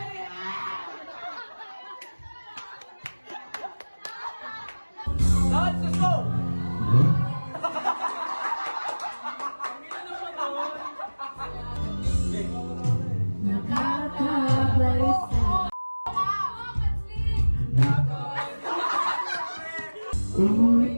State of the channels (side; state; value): both; inverted; correlation -1.00